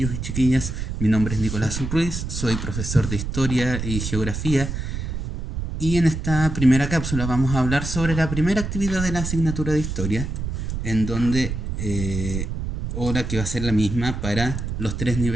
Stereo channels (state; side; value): noise; right; rumble, 4 dB below the sound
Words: y chiquillas, mi nombre es Nicolás Ruiz, soy profesor de Historia y Geografía y en esta primera cápsula vamos a hablar sobre la primera actividad de la asignatura de Historia, en donde, ahora que va a ser la misma para los tres